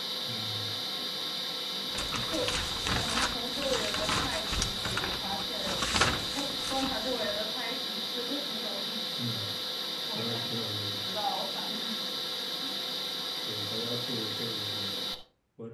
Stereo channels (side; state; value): both; identical; correlation 1.00